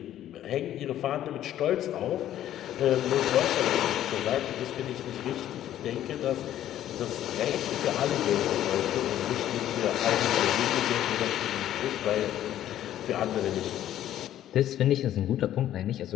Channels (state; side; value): quieter; right; 12.1 dB